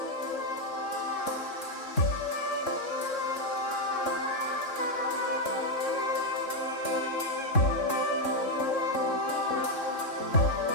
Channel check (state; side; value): late; right; 3.6 ms